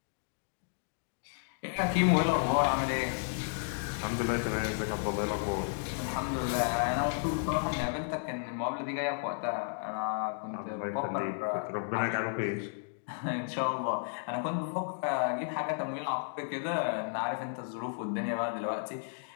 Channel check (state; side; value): silent; right; digital silence